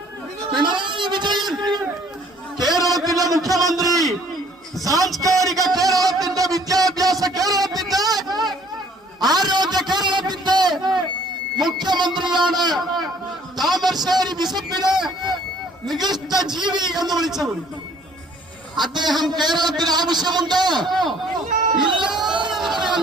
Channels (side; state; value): both; normal; correlation 0.58